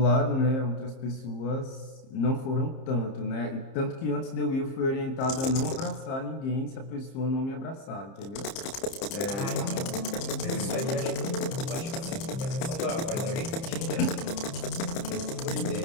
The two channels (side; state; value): right; late; 30 ms